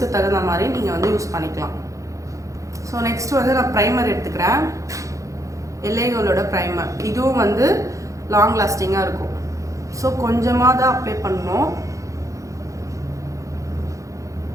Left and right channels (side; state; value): left; late; 0.15 ms